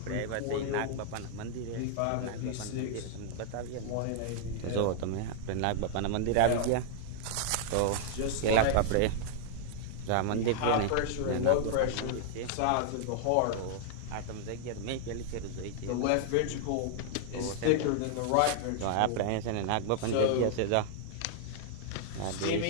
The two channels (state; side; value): different; both; correlation -0.01